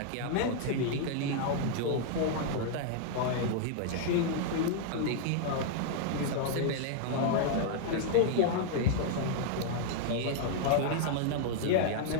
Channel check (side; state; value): both; different; correlation -0.01